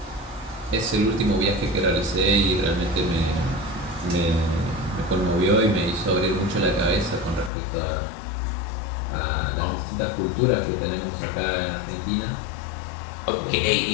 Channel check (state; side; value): drops out; right; at 7.5 s